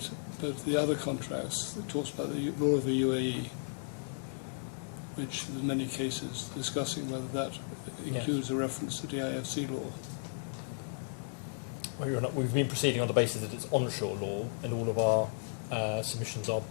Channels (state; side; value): silent; right; digital silence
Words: the other contracts that talks about the law of the UAE, which in many cases discussing whether that includes a reference to DIFC law. Well, we've been proceeding on the basis that it's onshore law, and all of our submissions are